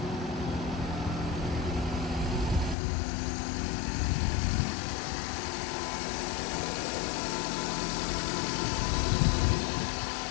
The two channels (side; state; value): right; drops out; at 2.8 s